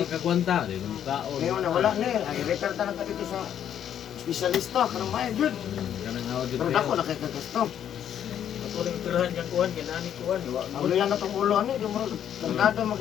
kagwanta. Hindi na kaon. Ngayon na wala na eh. Ay, refer talaga dito sa espesyalista. Karang maya, yun. Kanang hawad dito. Pero dako na kay kagasto. Ako rin tirahan niyang kuhan, ginani kuhan. Ang yan na itong ulo, ano, yung mga tangkado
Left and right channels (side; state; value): right; quieter; 9.7 dB